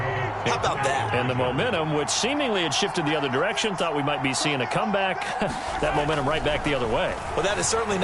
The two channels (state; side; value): identical; both; correlation 1.00